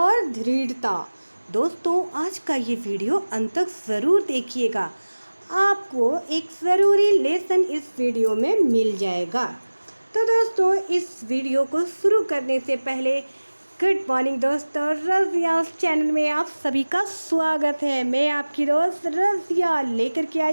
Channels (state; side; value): inverted; both; correlation -1.00